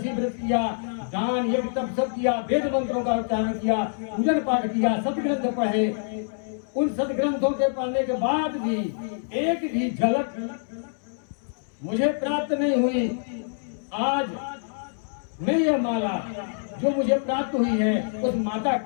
व्रत किया, दान यज्ञ तप सब किया, वेद मंत्रों का उच्चारण किया, पूजन पाठ किया, सदग्रंथ पढ़े, उन सदग्रंथों के पढ़ने के बाद भी एक भी झलक मुझे प्राप्त नहीं हुई। आज मैं ये माला जो मुझे प्राप्त हुई है उस माता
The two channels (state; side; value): silent; right; 61 dB below the other